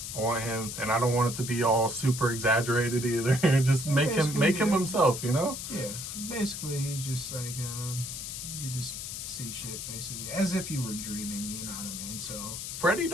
I want him, and I don't want it to be all super exaggerated either. Just make him himself, you know? Yeah, basically he's just like you just see shit basically as if you were dreaming. You know what I mean? So Freddy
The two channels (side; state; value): left; noise; hiss, 7 dB below the sound